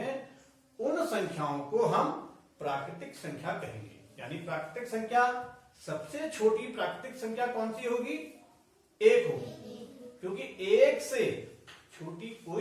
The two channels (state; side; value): identical; both; correlation 1.00